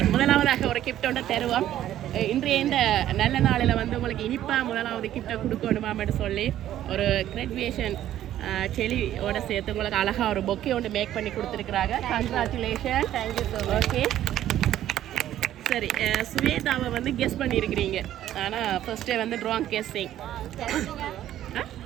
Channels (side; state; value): left; quieter; 12.3 dB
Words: முதலாவதாக ஒரு கிஃப்ட் ஒன்று தருவோம். இன்றைய இந்த நல்ல நாளில் வந்து உங்களுக்கு இனிப்பாக முதலாவது கிஃப்டை கொடுக்கணுமான்னு சொல்லி ஒரு கிராஜுவேஷன் செடியோட சேர்த்து உங்களுக்கு அழகாக ஒரு பொக்கே ஒன்று மேக் பண்ணி கொடுத்துருக்குறாங்க. Congratulation. Thank you so much. Okay, சரி, ஸ்வேதாவை வந்து கெஸ் பண்ணியிருக்கிறீங்க. ஆனால் ஃபர்ஸ்டே வந்து ராங் கெஸ்ஸிங்.